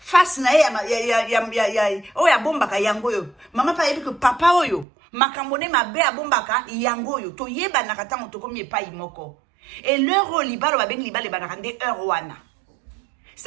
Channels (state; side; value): drops out; left; at 4.9 s